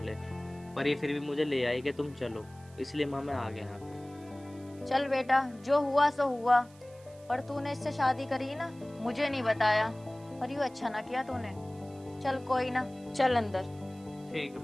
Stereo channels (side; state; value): right; noise; hiss, 26 dB below the sound